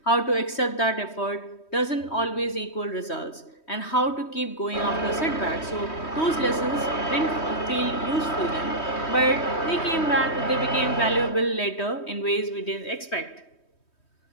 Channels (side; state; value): right; late; 3.2 ms